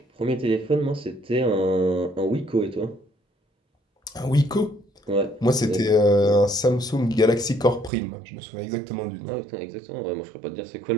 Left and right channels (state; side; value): drops out; left; at 7.9 s